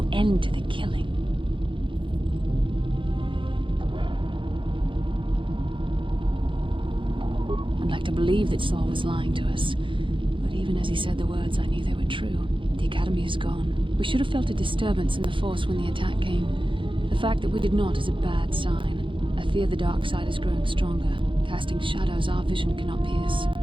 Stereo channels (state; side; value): late; left; 0.25 ms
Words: end to the killing? I'd like to believe that Saul was lying to us. But even as he said the words, I knew they were true. The Academy is gone. We should have felt a disturbance in the Force when the attack came. The fact that we did not is a bad sign. I fear the dark side is growing stronger, casting shadows our vision cannot pierce.